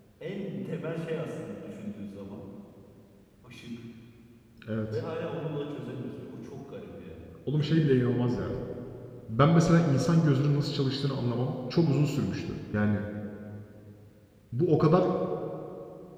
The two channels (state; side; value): identical; both; correlation 1.00